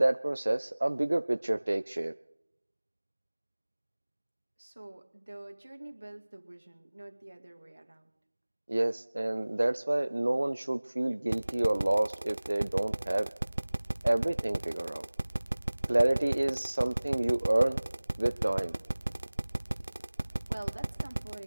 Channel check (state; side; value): inverted; both; correlation -1.00